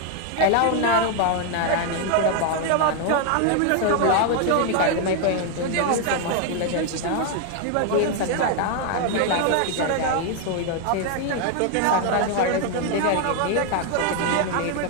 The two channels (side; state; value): both; different; correlation 0.00